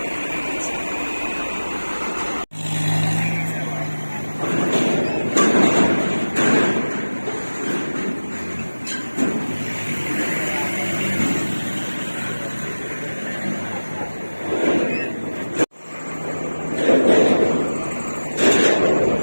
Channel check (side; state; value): both; inverted; correlation -1.00